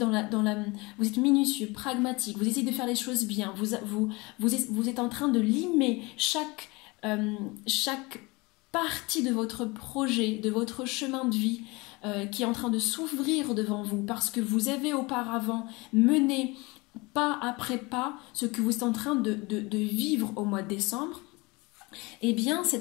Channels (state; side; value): quieter; right; 24.9 dB